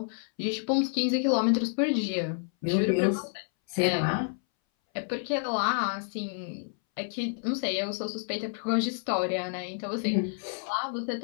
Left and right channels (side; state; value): right; silent; 58 dB below the other